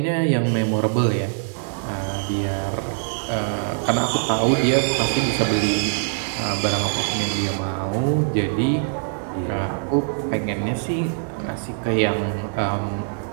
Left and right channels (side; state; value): left; silent; digital silence